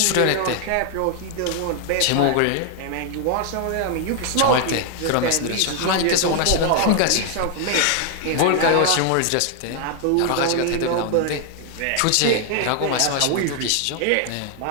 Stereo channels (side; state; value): both; different; correlation 0.00